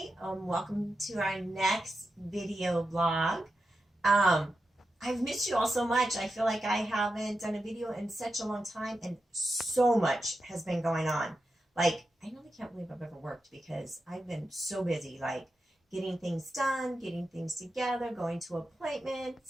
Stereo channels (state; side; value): normal; both; correlation 0.89